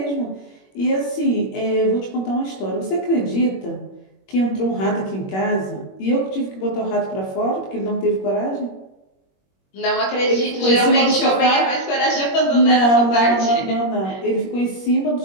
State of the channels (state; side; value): late; right; 21 ms